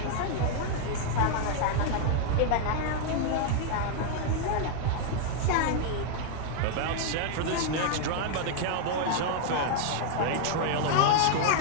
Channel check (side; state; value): both; different; correlation -0.01